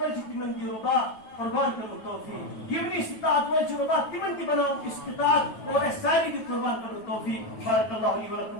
ول تمن دی ربا قربان کرو توفیق یم استطاعت ول ربا تمن تہ بناو استطاعت اور ساری دی قربان کرو توفیق بارک اللہ لی ولکم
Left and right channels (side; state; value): right; late; 9.3 ms